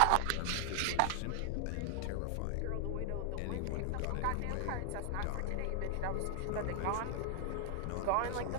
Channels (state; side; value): different; both; correlation 0.00